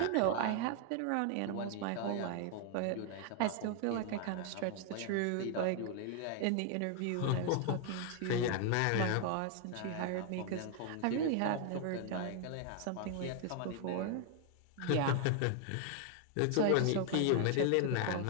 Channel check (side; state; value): both; different; correlation 0.00